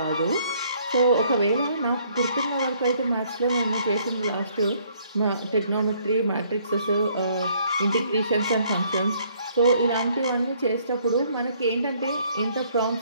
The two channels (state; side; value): inverted; both; correlation -0.64